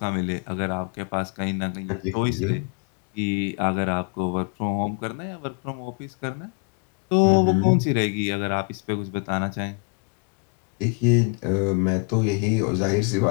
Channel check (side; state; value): right; quieter; 33.5 dB